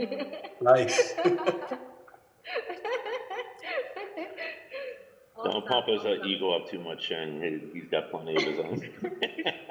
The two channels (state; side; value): identical; both; correlation 1.00